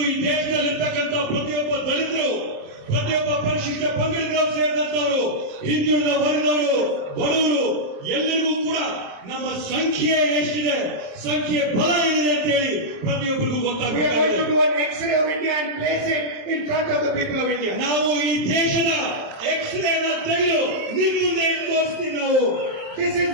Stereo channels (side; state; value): left; late; 27 ms